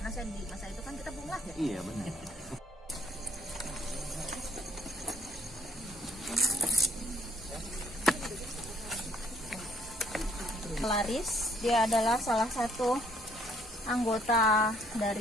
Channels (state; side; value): normal; both; correlation 0.64